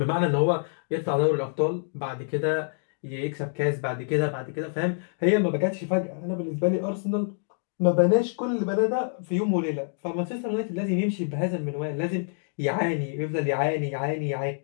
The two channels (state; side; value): silent; right; digital silence